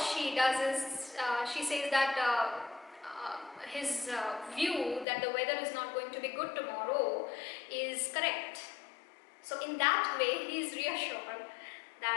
does is, she says that his view that the weather is not going to be good tomorrow is correct. So in that way, he is reassured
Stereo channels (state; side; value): drops out; right; at 5.1 s